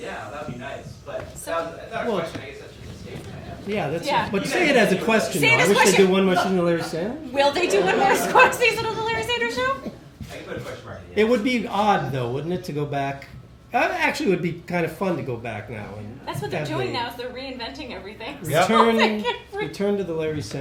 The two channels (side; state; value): both; identical; correlation 1.00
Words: that'd be nice. But So- that was, I thought Well- a question. I guess that's just a statement I have. Yeah, that's. Yeah. But say it as a question. Say it though. as I a wish they question. do one more season of Larry Sanders. Will they do one more season of the Larry Sanders Show? I can put a question mark at the It end. would be odd, though, wouldn't it, to go back? Actually, it would be kind of fun to go back now. And That's what they're have doing the now. Is they're reinventing everything. Yep. Return to the Larry